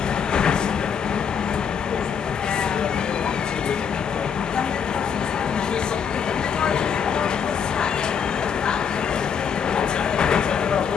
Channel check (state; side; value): quieter; right; 7.1 dB